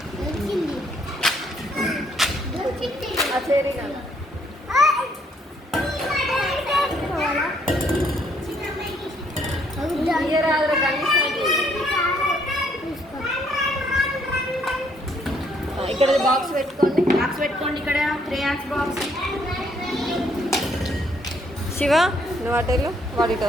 ఇక్కడ బాక్స్ పెట్టుకోండి. బాక్స్ పెట్టుకోండి. ఇక్కడ క్రేయాన్స్ బాక్స్. శివ, నువ్వు అటెళ్ళు, వాడి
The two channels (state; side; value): normal; both; correlation 0.68